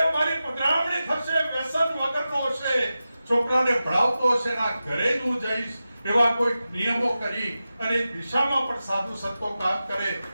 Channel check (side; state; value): both; inverted; correlation -0.93